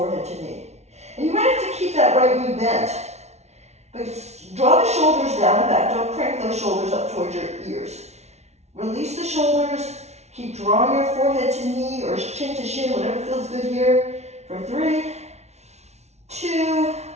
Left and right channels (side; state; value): left; late; 0.32 ms